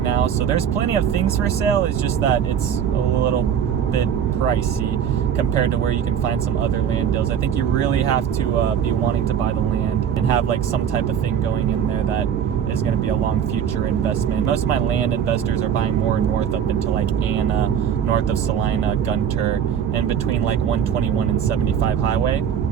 So there's plenty of things for sale. It's just that it's a little bit pricey compared to where you can find some other land deals. I think you really have to be wanting to buy the land and have like some type of thing going in there that is going to be a long future investment. Most of my land investors are buying more north up into like Anna, north of Celina, Gunter, and between like 121 and 75 highway.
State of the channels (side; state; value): left; quieter; 8.4 dB